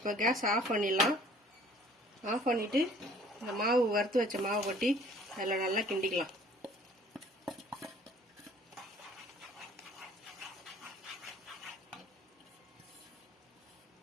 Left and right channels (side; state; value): both; normal; correlation 0.54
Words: கேஸ் ஆஃப் பண்ணிடலாம். ஆஃப் பண்ணிட்டு இந்த மாவு வறுத்து வச்ச மாவு கொட்டி அதில் நல்லா கிண்டிக்கலாம்.